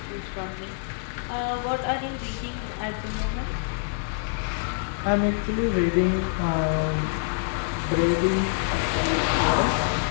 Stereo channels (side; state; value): right; silent; digital silence